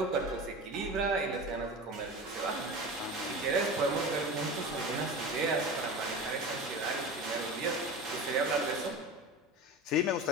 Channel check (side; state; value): both; normal; correlation 0.30